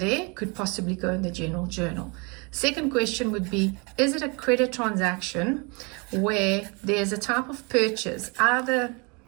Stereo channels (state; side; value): quieter; left; 30.9 dB